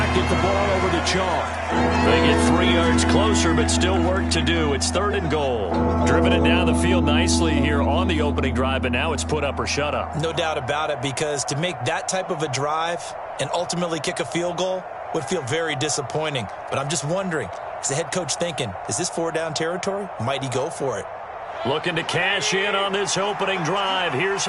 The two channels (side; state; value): both; identical; correlation 1.00